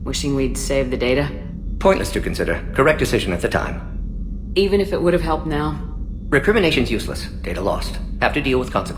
Wishing we'd saved the data? Pointless to consider. Correct decision at the time. Even if it would have helped now? Recrimination's useless. Data lost. Have to deal with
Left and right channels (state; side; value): identical; both; correlation 1.00